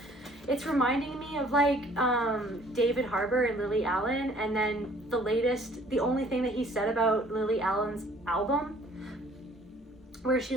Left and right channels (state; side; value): normal; both; correlation 0.56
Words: It's reminding me of like David Harbour and Lily Allen, and then the only thing that he said about Lily Allen's album, where